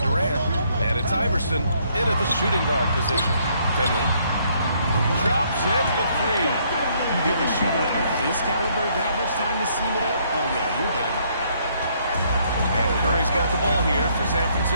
and it's Iverson in at the shooting guard position. Finley drops in the 3. You give a shooter of his caliber that much time to seam it up, oh yeah, you're done. And Curry's got the ball here for San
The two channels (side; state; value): both; inverted; correlation -0.68